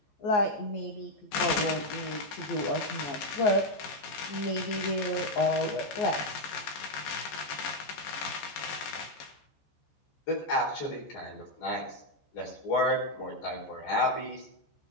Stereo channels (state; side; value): late; right; 15 ms